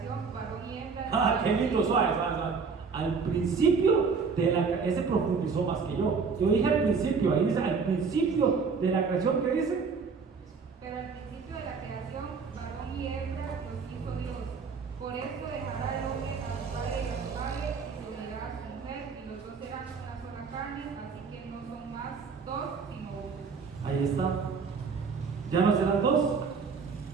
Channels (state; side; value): quieter; left; 5.3 dB